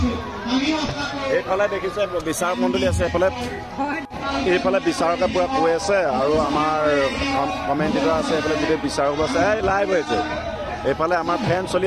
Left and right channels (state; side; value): identical; both; correlation 1.00